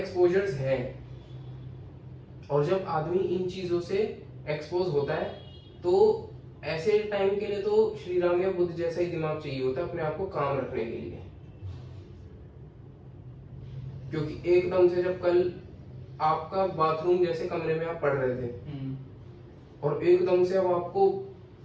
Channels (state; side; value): identical; both; correlation 1.00